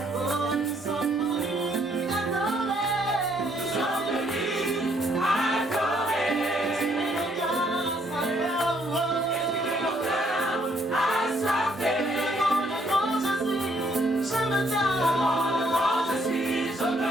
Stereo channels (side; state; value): both; normal; correlation 0.68